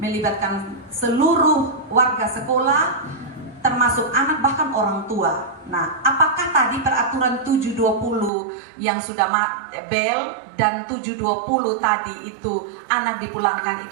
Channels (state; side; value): drops out; left; at 8.3 s